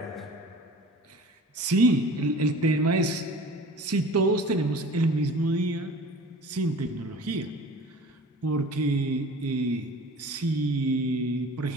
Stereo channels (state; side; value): normal; both; correlation 0.42